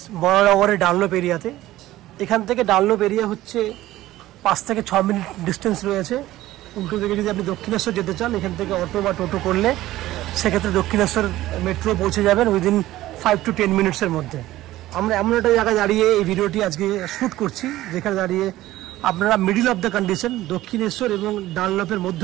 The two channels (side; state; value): left; quieter; 15.7 dB